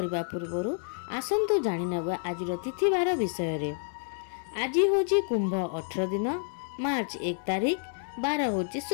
पूर्वर आसतु जाणीनवा आजिर तिथिवार विषय रे। आज हूँ कुंभ 18 दिन मार्च 1 तारिख 12 हूँ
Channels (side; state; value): right; silent; 58 dB below the other